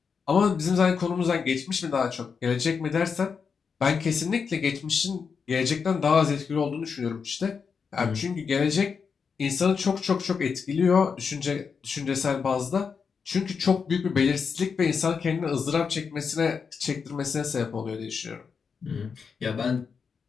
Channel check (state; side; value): quieter; right; 5.9 dB